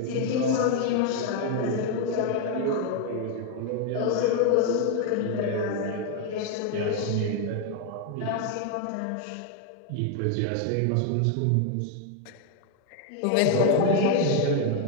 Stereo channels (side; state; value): both; different; correlation 0.00